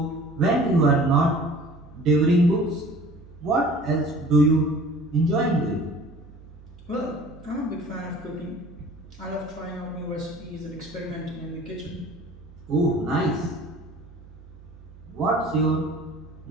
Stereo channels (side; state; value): right; noise; hum, 20 dB below the sound